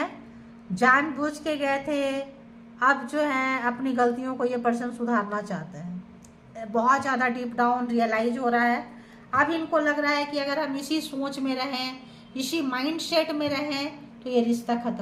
जानबूझ के गए थे, अब जो है अपनी गलतियों को ये पर्सन सुधारना चाहते हैं। बहुत ज़्यादा डीप डाउन रियलाइज हो रहा है। अब इनको लग रहा है कि अगर हम इसी सोच में रहें, इसी माइंडसेट में रहें, तो ये रिश्ता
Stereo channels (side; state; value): both; identical; correlation 1.00